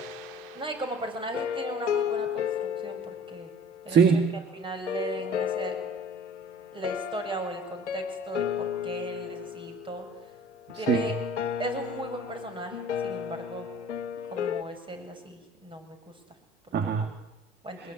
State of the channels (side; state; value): both; normal; correlation 0.47